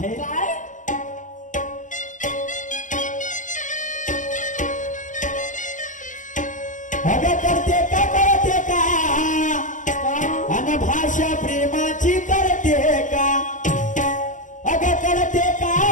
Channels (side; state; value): right; late; 0.37 ms